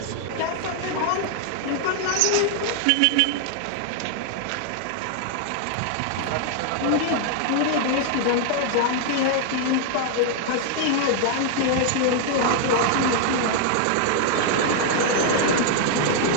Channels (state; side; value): different; both; correlation 0.00